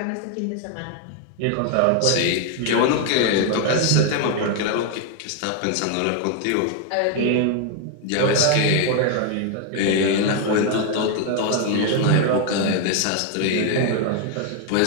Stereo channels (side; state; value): both; different; correlation 0.00